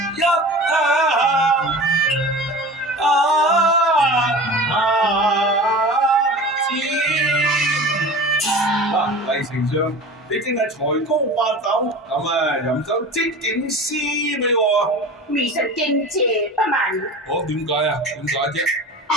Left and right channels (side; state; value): both; normal; correlation 0.36